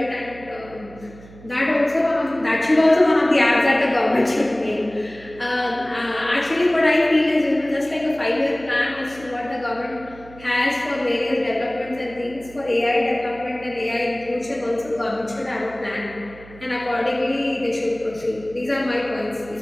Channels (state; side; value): noise; right; hum, 20 dB below the sound